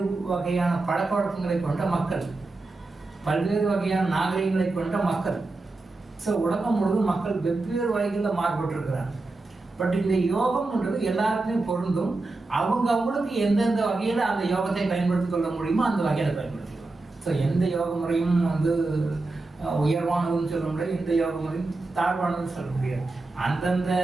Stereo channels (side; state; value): left; quieter; 3.3 dB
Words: வகையான பழக்க வழக்கங்களை கொண்ட மக்கள், பல்வேறு வகையான நாகரிகங்களை கொண்ட மக்கள். ஸோ உலகம் முழுவதும் மக்கள் வெவ்வேறு வகைகளில் மாறுபட்டிருக்கிறாங்க. பட் இந்த யோகம்ன்றது எல்லாருக்குமே பொருந்தும். அவங்களுக்கு எந்தெந்த வகையில் அந்த யோகத்தை பயன்படுத்தி கொள்ள முடியுமோ அந்த வகையில் பயன்படுத்திக்கலாம். ஸோ எந்த யோக முறையும் உயர்வானதுன்னு சொல்ல முடியாது, எந்த யோக முறையும் தாழ்வானதுன்னு சொல்ல முடியாது. அந்தந்த